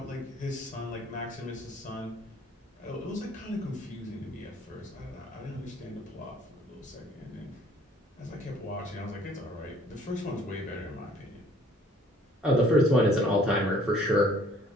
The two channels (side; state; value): both; normal; correlation 0.57